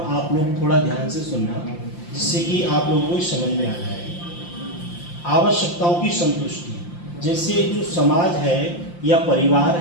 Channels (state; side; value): late; right; 5.8 ms